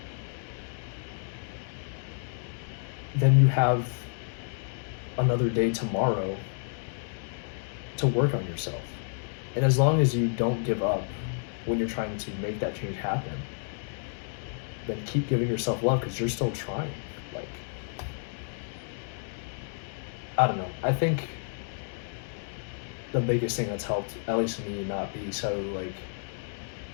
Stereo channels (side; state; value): right; silent; digital silence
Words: then you have another day tomorrow to work on yourself. And as long as you don't give up when you're trying to make that change happen, then keep giving yourself love, because you're still trying. Like, I don't know. I think the biggest thing that's helped, at least me, not be so like